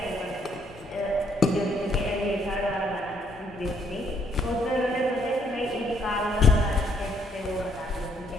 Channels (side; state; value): both; normal; correlation 0.69